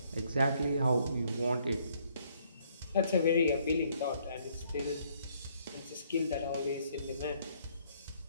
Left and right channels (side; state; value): both; inverted; correlation -0.67